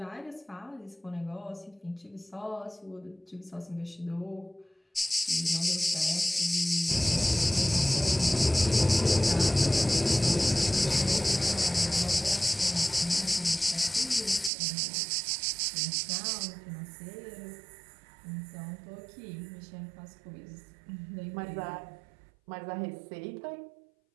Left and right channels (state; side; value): drops out; left; at 14.5 s